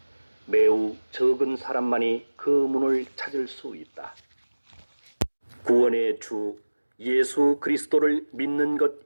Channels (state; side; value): inverted; both; correlation -1.00